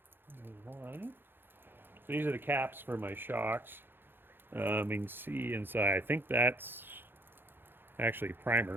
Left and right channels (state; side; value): late; left; 0.10 ms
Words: There's one. So these are the caps for my shocks. You can see inside. I think that's actually